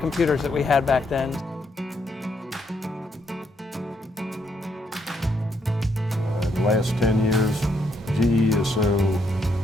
that we had back then. The last 10 years, GE is so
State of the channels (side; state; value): both; normal; correlation 0.75